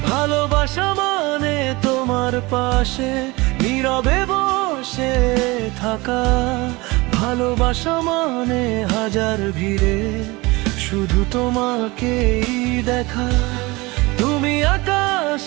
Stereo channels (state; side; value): quieter; left; 23.2 dB